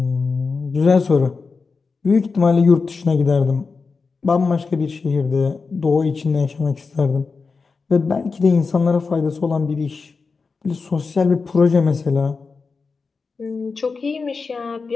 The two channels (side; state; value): right; quieter; 4.6 dB